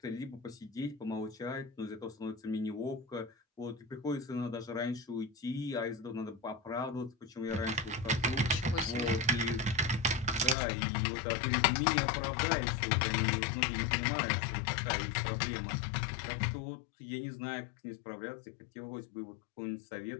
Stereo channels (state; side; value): drops out; right; at 10.6 s